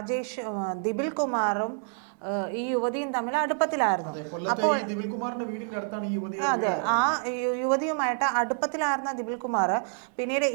ദിബിൽ കുമാറും ഈ യുവതിയും തമ്മിൽ അടുപ്പത്തിലായിരുന്നു. അപ്പോൾ അതെ, ആ യുവതിയുമായിട്ട് അടുപ്പത്തിലായിരുന്ന ദിബിൽ കുമാർ പിന്നീട്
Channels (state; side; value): silent; left; 59 dB below the other